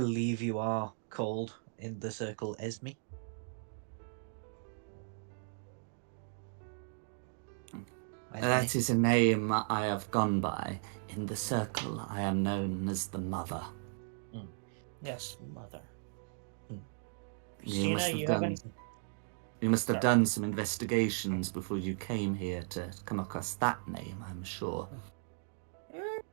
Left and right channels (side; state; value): left; silent; digital silence